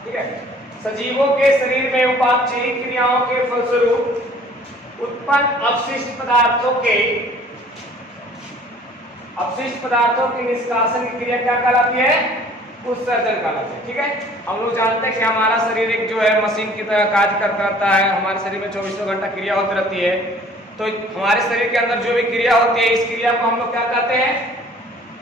ठीक है, सजीवों के शरीर में उपापचयी क्रियाओं के फलस्वरूप उत्पन्न अपशिष्ट पदार्थों की निष्कासन की क्रिया क्या कहलाती है? उत्सर्जन कहलाती है। ठीक है, हम लोग जानते हैं कि हमारा शरीर एक जो है मशीन की तरह कार्य करता है। हमारे शरीर में 24 घंटा क्रिया होती रहती है। तो हमारे शरीर के अंदर जो भी क्रिया होती है, इस क्रिया को हम लोग क्या कहते हैं?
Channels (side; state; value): both; normal; correlation 0.52